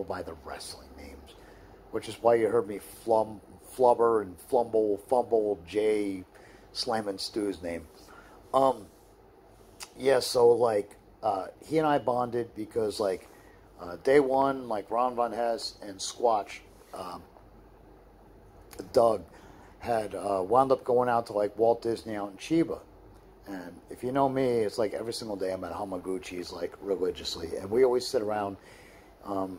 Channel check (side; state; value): both; identical; correlation 1.00